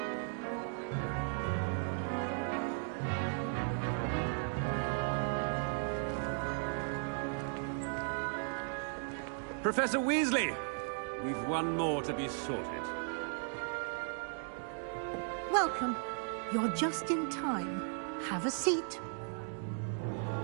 Professor Weasley, we've one more to be sorted. Welcome. You're just in time. Have a seat.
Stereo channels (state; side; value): silent; left; 54 dB below the other